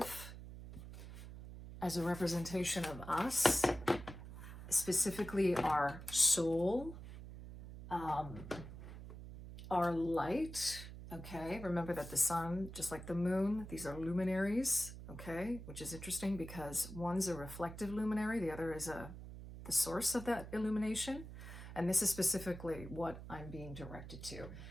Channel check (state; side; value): noise; right; hum, 12 dB below the sound